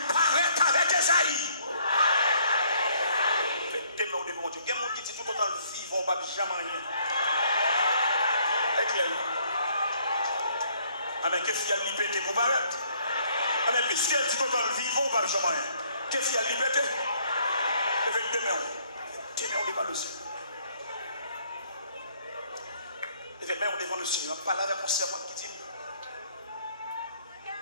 paraître avec Esaïe. Faites au devant Dieu. Il y a des gens qui disent tout autant vivre, on ne va jamais rien. Est clair? Amen. Qu'est-ce qu'il y a de liberté pour paraître? Amen. Qu'est-ce qu'il y a de tout autant vivre, on ne va jamais rien. Qu'est-ce qu'il y a de liberté? Effectivement. On devant le Seigneur. Effectivement, on devant le Seigneur. On parle avec mon servante qui dit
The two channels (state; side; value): inverted; both; correlation -0.64